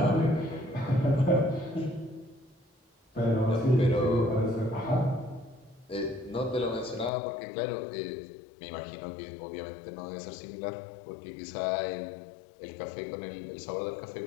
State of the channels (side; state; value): right; drops out; at 7.1 s